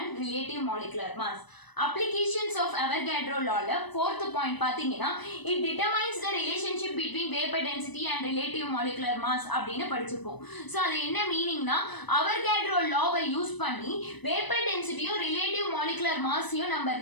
relative molecular mass. Applications of Avogadro law fourth point பாத்தீங்கன்னா it determines the relationship between vapor density and relative molecular mass அப்படினு படிச்சிருப்போம். So அது என்ன மீனிங்னா Avogadro law-வை use பண்ணி vapor density-யும் relative molecular mass-யும் நம்ம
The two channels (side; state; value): right; late; 1.0 ms